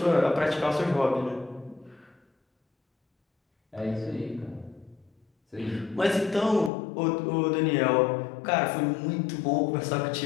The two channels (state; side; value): drops out; right; at 6.7 s